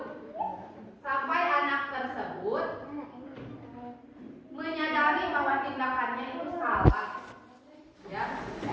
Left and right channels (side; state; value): both; identical; correlation 1.00